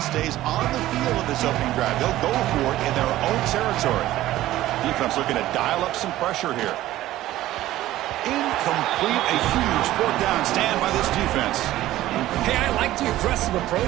stays on the field of this opening drive. They'll go for it in their own territory. Defense looking to dial up some pressure here. Incomplete, a huge fourth down stand by this defense. Hey, I like the aggressive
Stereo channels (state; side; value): quieter; left; 15.0 dB